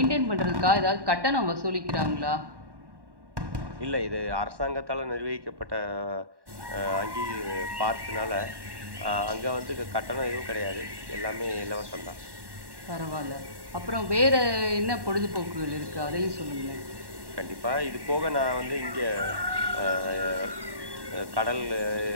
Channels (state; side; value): late; left; 1.1 ms